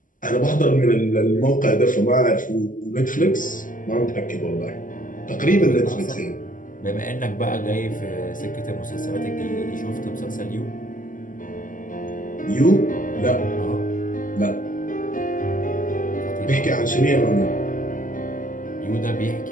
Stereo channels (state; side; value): late; right; 0.38 ms